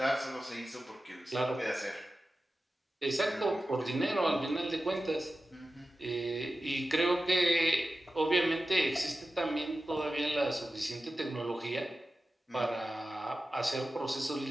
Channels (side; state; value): both; normal; correlation 0.94